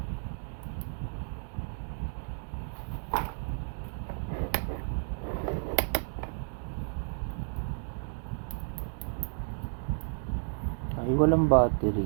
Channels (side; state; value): left; silent; digital silence